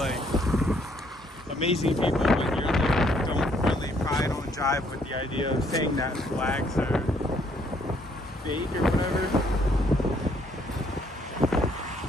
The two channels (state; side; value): normal; both; correlation 0.67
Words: amazing people, but you're like, don't really probably don't jive with the idea of saying that flags are fake or whatever.